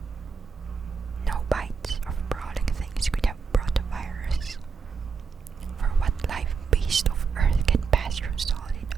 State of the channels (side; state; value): left; quieter; 5.5 dB